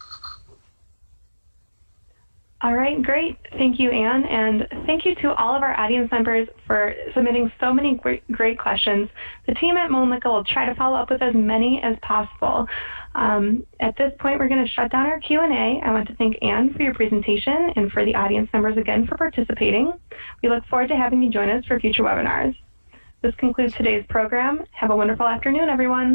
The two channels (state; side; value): inverted; both; correlation -1.00